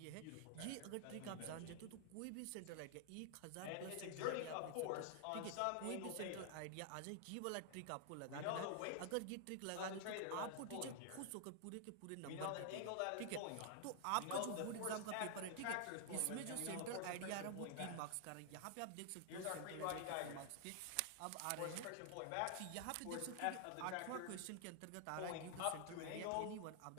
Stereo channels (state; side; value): different; both; correlation 0.00